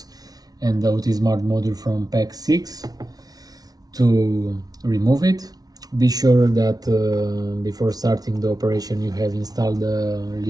and the OT Smart module from pack 6 to remove it. Be sure that before starting the operation you have installed the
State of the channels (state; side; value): late; left; 0.19 ms